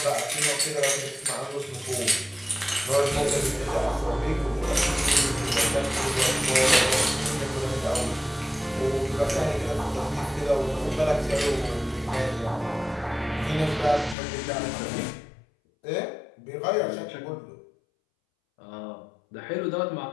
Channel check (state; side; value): drops out; right; at 14.2 s